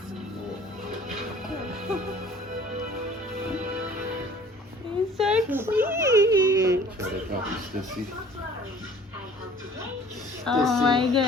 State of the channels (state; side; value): normal; both; correlation 0.51